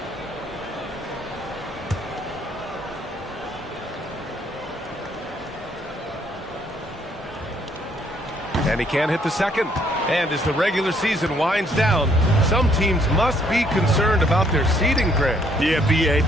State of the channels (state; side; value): normal; both; correlation 0.67